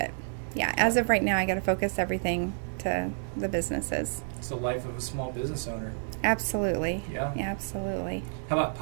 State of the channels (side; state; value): left; silent; 58 dB below the other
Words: as of right now, I got to focus everything to the businesses. It's the life of a small business owner. Absolutely. Yeah. Absolutely. How about